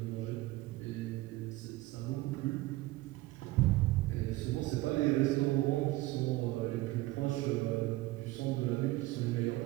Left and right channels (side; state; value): left; quieter; 18.8 dB